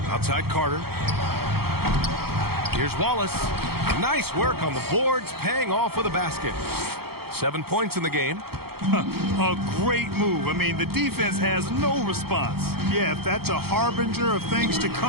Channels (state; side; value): late; left; 0.95 ms